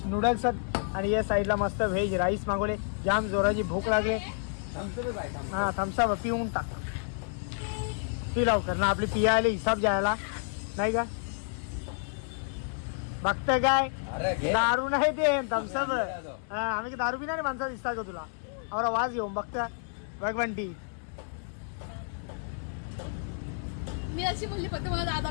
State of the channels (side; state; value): right; silent; digital silence